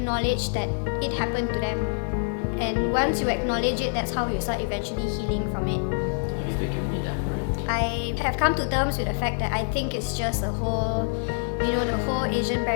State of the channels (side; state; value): right; silent; 61 dB below the other